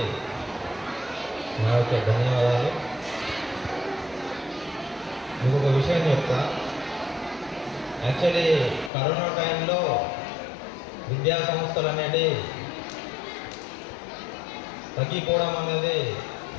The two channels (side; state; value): right; drops out; at 8.9 s